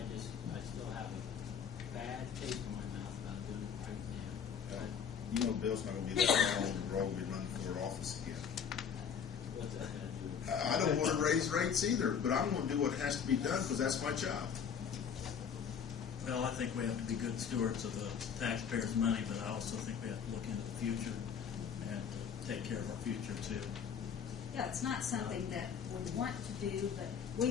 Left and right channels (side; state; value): right; quieter; 7.3 dB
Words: still have a bad taste in my mouth about doing it right now. You know, Bill's not going to be that long on the road to be running for office again. What's that going to do? I don't want to raise rates either, but I'm going to do what has to be done because that's my job. Well, I think we have to be good stewards of the taxpayers' money, but I also think we have to look into the future and take care of our future too. Yeah, it's not something that we want to do, but